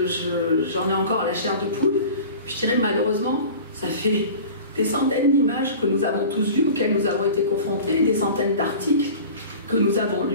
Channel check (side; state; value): both; inverted; correlation -0.39